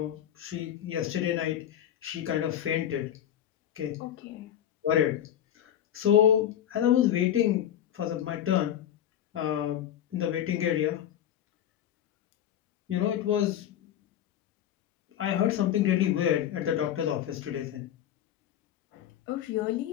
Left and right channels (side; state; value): right; quieter; 10.6 dB